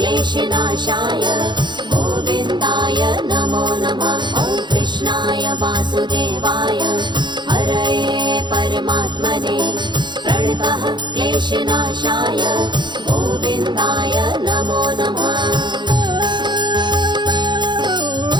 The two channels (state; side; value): late; left; 0.22 ms